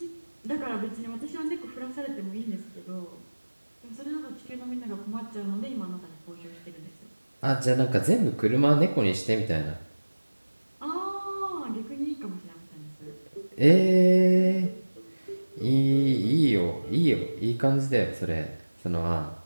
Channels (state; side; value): inverted; both; correlation -1.00